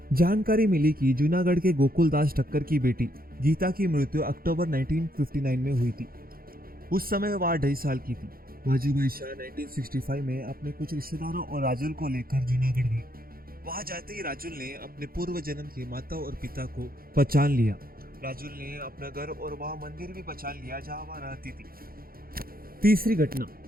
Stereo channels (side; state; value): left; late; 0.43 ms